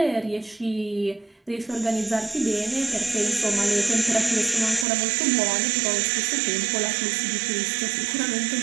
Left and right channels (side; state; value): left; drops out; at 4.9 s